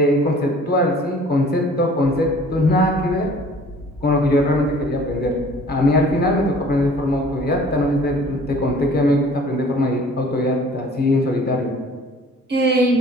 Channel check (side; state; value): both; normal; correlation 0.51